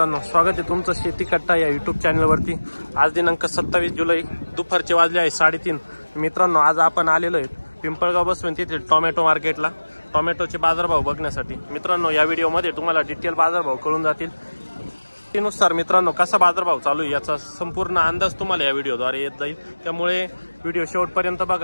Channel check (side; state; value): both; inverted; correlation -1.00